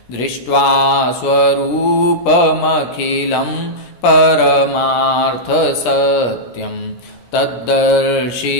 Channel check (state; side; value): late; right; 17 ms